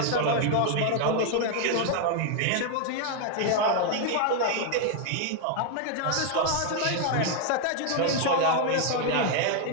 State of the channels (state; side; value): different; both; correlation 0.00